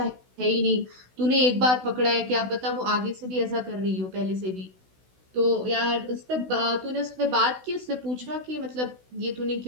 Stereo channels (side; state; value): left; late; 16 ms